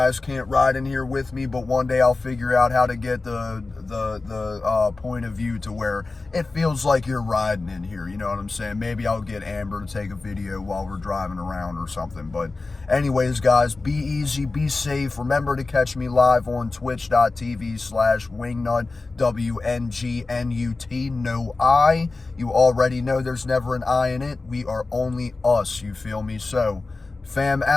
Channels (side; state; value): right; quieter; 3.6 dB